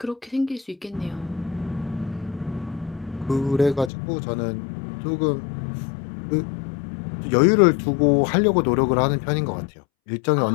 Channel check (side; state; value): right; drops out; at 3.9 s